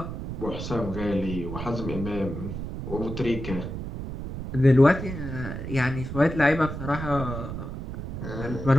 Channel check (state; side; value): noise; right; rumble, 6 dB below the sound